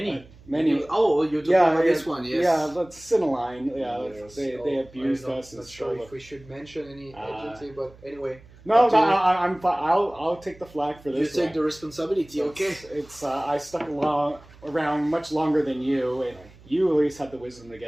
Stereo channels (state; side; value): noise; right; hum, 23 dB below the sound